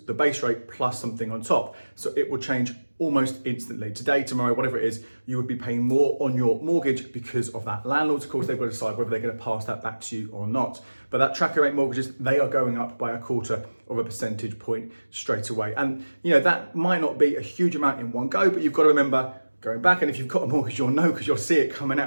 the base rate plus something on top. So it will change almost instantly. Today, tomorrow, whatever it is, you would be paying more on your mortgage because of that. Landlords, of course, they've got to decide whether they're going to pass that back to you or not. But that tracker rate mortgages, they are going up by 1/4 of a percentage point straight away. And that might not be a huge amount in one go, but you've got to remember going back, and if you've got a mortgage, you'll know because you'll see it coming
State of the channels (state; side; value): inverted; both; correlation -1.00